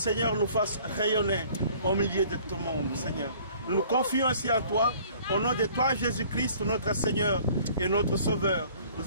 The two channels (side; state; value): both; inverted; correlation -0.53